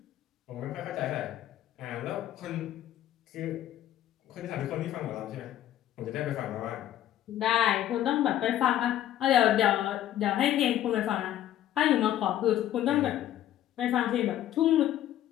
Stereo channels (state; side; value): quieter; right; 12.3 dB